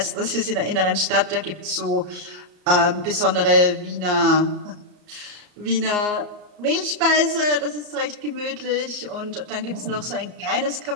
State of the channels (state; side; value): late; left; 34 ms